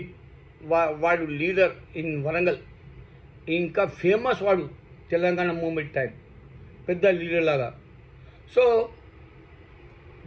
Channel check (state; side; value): identical; both; correlation 1.00